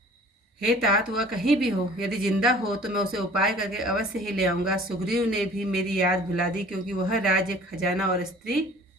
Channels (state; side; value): normal; both; correlation 0.49